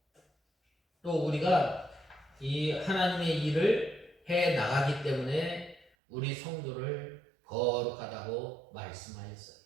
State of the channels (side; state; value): left; drops out; at 5.9 s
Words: 우리가 이 하나님의 일을 해 나가기 때문에 우리 성도를 거룩하다고 말씀하셨어요.